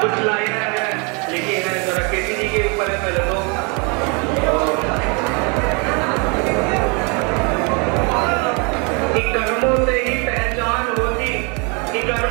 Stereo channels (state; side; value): quieter; left; 32.6 dB